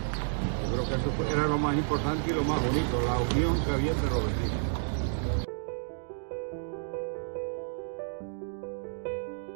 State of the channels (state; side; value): silent; left; digital silence